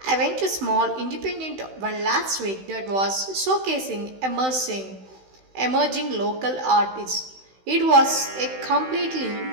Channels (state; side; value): late; left; 16 ms